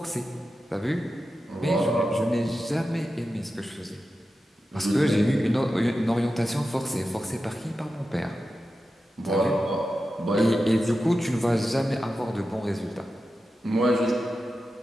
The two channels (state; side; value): normal; both; correlation 0.91